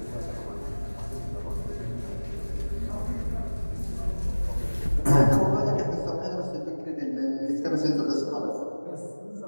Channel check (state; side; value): inverted; both; correlation -1.00